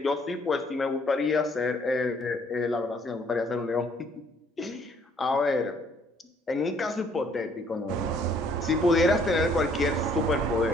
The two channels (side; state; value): both; normal; correlation 0.63